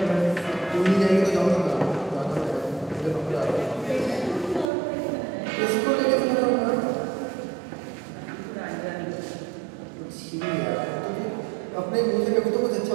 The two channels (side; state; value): left; drops out; at 4.7 s